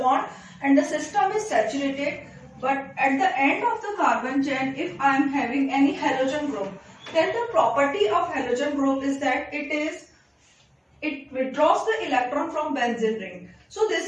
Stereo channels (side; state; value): both; identical; correlation 1.00